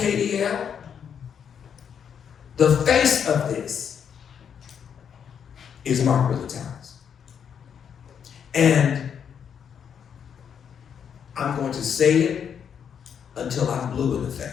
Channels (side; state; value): right; quieter; 7.8 dB